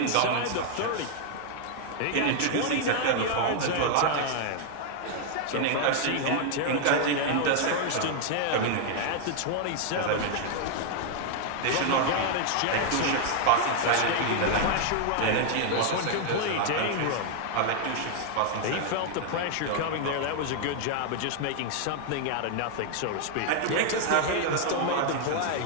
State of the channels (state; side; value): different; both; correlation 0.00